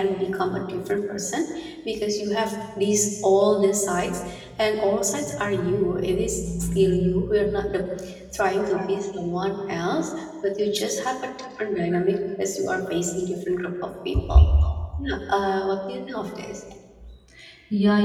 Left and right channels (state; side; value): identical; both; correlation 1.00